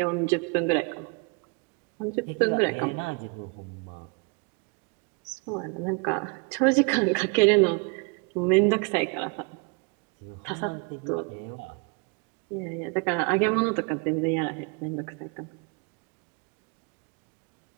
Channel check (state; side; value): quieter; left; 33.1 dB